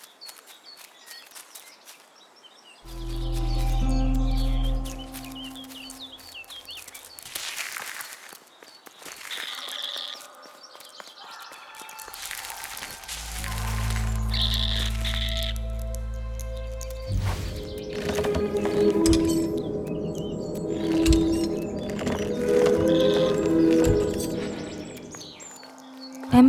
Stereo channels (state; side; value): identical; both; correlation 1.00